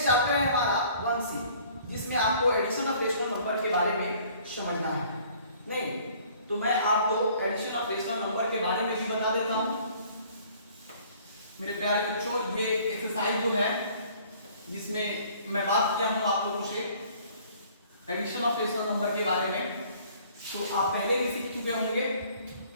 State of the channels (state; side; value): inverted; both; correlation -0.55